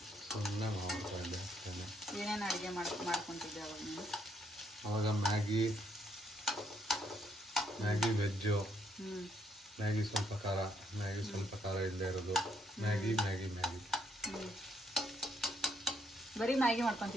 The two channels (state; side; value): normal; both; correlation 0.72